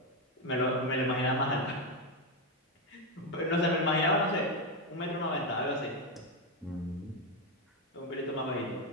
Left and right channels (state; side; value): normal; both; correlation 0.08